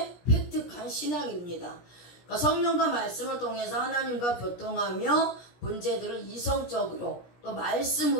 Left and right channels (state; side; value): late; right; 17 ms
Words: 획득한 신앙입니다. 그러니까 성령과 말씀을 통해서 하나님과 교통하며 문제들을 이성적으로 또